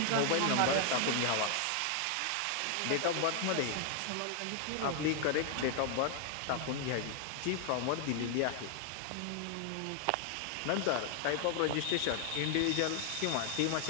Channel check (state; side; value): different; both; correlation 0.00